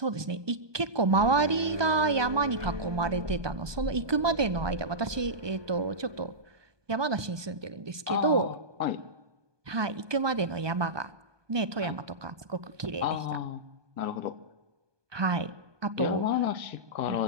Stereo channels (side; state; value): left; late; 1.2 ms